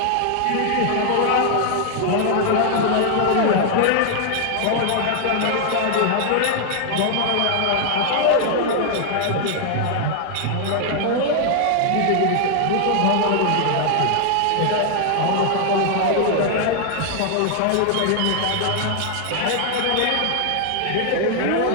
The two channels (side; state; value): both; different; correlation 0.00